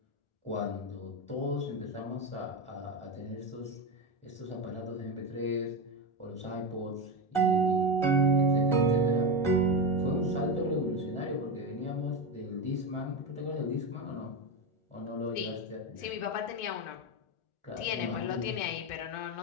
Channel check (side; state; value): right; late; 1.4 ms